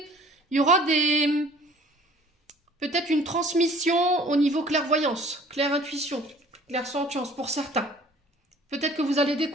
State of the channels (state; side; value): normal; both; correlation 0.52